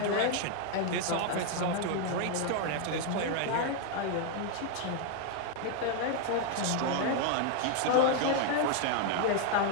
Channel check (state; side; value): different; both; correlation 0.00